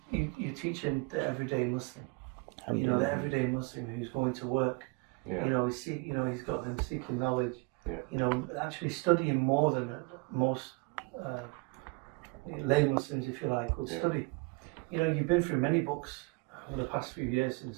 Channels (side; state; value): left; quieter; 28.4 dB